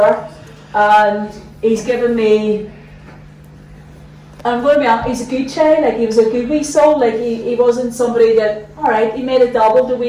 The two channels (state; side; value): identical; both; correlation 1.00